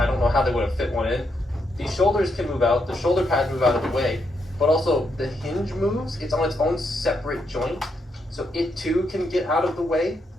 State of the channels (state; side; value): normal; both; correlation 0.79